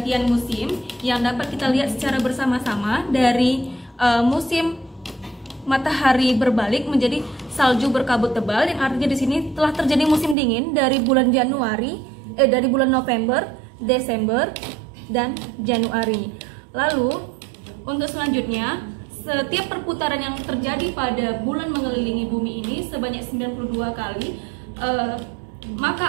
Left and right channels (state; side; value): drops out; left; at 10.4 s